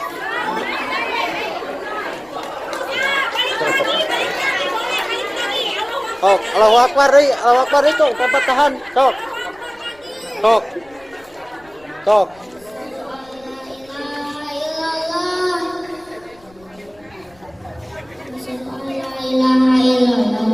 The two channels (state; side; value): noise; left; rumble, 29 dB below the sound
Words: Sok, Allahu Akbar deui, Allahu Akbar deui cok, tempat tahan, sok. Sok. Sok.